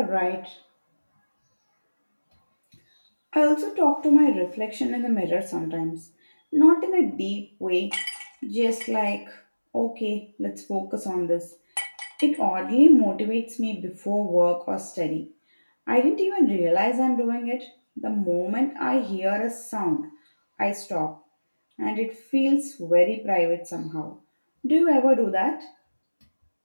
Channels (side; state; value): both; inverted; correlation -1.00